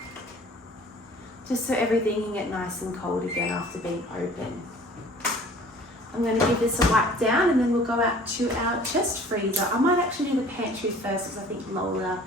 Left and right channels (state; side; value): normal; both; correlation 0.50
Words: Just so everything can get nice and cold again after being open. I'm going to give this a wipe down and then we'll go out to our chest freezer. I might actually do the pantry first because I think Lola